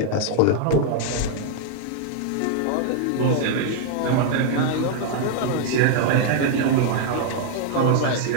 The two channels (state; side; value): different; both; correlation 0.00